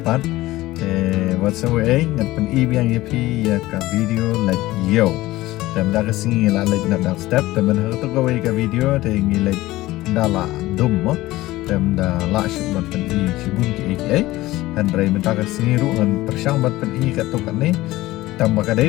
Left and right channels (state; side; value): quieter; right; 17.6 dB